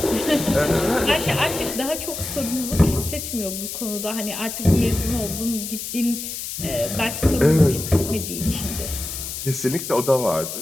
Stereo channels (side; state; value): left; noise; hiss, 7 dB below the sound